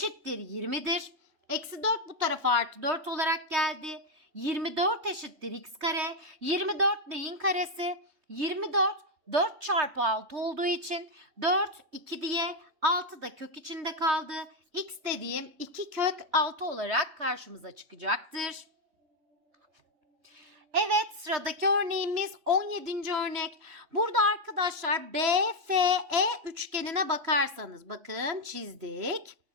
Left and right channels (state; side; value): late; left; 3.2 ms